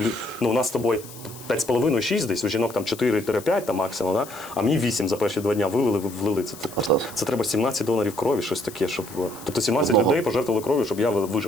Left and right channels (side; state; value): left; noise; hiss, 17 dB below the sound